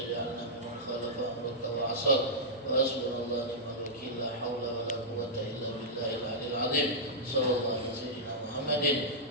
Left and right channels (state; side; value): normal; both; correlation -0.10